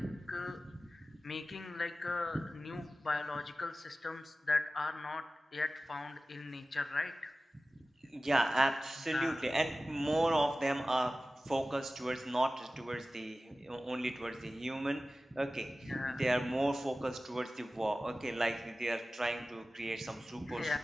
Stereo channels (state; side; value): normal; both; correlation 0.96